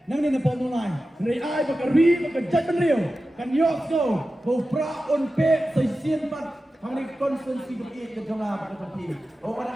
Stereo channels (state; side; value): normal; both; correlation 0.93